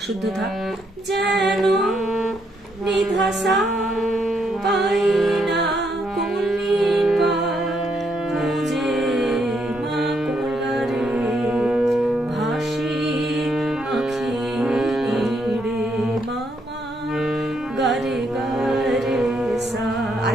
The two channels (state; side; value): normal; both; correlation 0.75